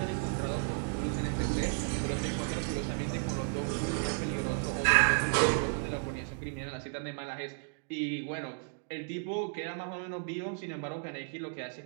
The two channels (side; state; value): left; silent; 55 dB below the other